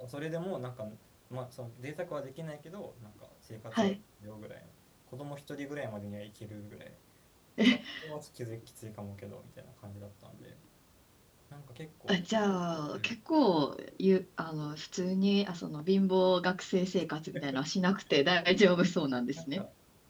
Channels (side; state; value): both; identical; correlation 1.00